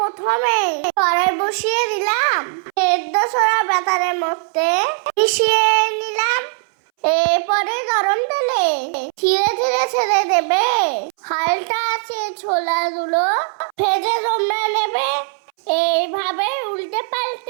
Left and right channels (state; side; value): silent; left; 67 dB below the other